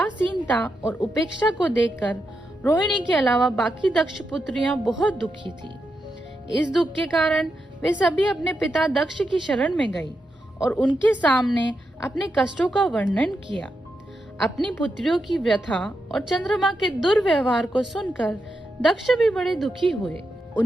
और उपेक्षा को देखकर रोहिणी के अलावा बाकी दक्ष पुत्रियां बहुत दुखी थी। इस दुख के कारण वे सभी अपने पिता दक्ष की शरण में गई और उनके सामने अपने कष्टों का वर्णन किया। अपनी पुत्रियों की व्यथा और चंद्रमा के दुर्व्यवहार को सुनकर दक्ष भी बड़े दुखी हुए।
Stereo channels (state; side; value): normal; both; correlation 0.86